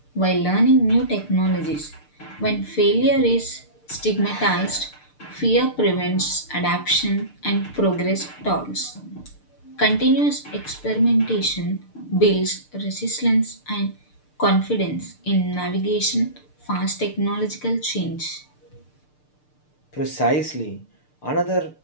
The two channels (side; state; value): right; late; 6.7 ms